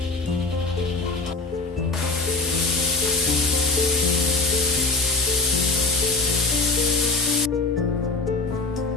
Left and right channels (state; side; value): quieter; right; 3.5 dB